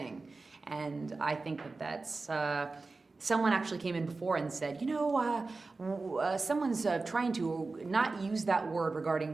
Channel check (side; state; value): left; quieter; 3.7 dB